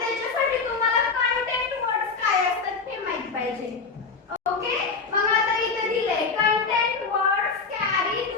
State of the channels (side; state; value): right; quieter; 4.7 dB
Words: तुम्हाला कंटेंट वर्ड्स काय असतात हे माहित पाहिजे. ओके, मग आता इथे दिलंय content words carry